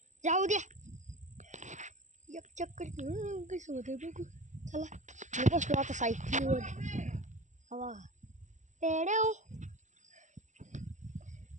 जाऊ द्या. एक चक्कर कसं होतं बघू. चला मी बसलो आता सायकलीवर. हवा तेडेव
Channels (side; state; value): left; late; 0.35 ms